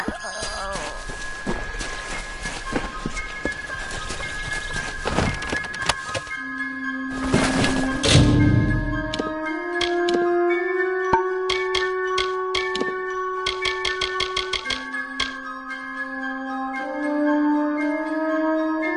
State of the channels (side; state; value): both; identical; correlation 1.00